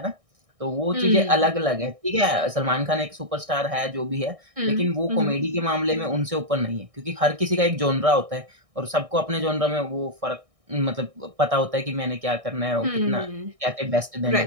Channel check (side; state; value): left; late; 1.6 ms